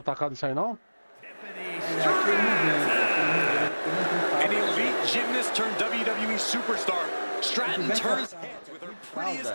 atacado isso aí, não? É aquele An elite gymnast turned WWE superstar. Stratton Tivesse turns essa heads with her fralda,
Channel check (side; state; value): both; inverted; correlation -1.00